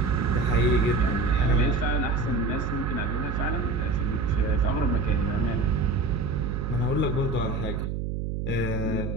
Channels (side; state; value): right; noise; hum, 3 dB below the sound